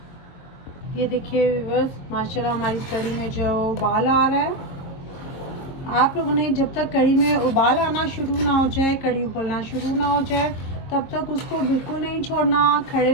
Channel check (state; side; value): late; right; 22 ms